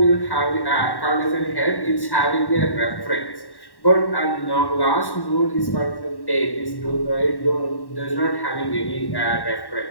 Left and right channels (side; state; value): right; late; 1.1 ms